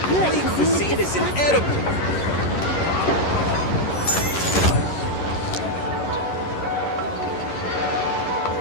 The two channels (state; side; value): late; right; 11 ms